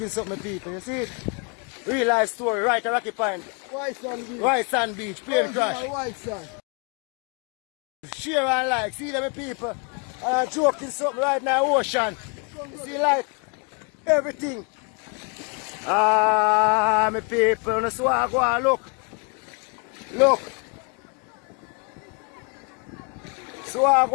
something, people. You see it? Real life story right at Rocky Point. White sand beach. White sand beach. Plane crash. White sand. Share and like, see them people. I'm joking something right now, ocean. You see like everything. Ah, my people, that's why I go and look. Look. So I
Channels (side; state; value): right; quieter; 34.9 dB